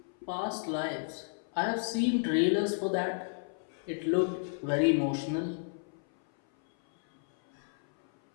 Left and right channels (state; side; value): silent; right; 56 dB below the other